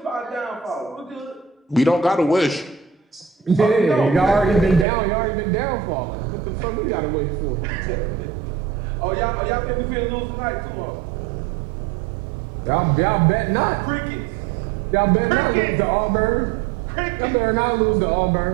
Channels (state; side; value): drops out; left; at 4.9 s